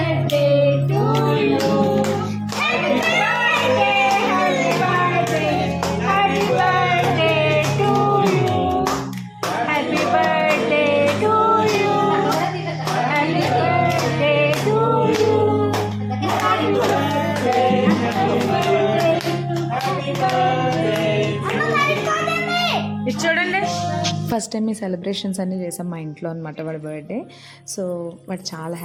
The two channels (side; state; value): both; identical; correlation 1.00